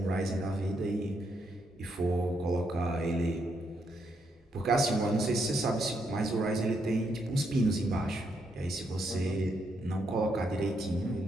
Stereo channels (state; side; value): normal; both; correlation 0.78